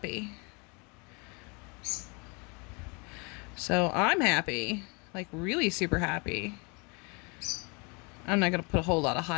So I'm happy, like really super happy. I'm not going to put a whole lot of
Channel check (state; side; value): quieter; right; 31.1 dB